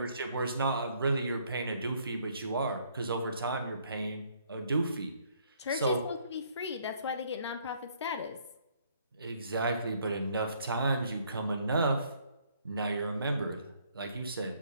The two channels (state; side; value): inverted; both; correlation -0.66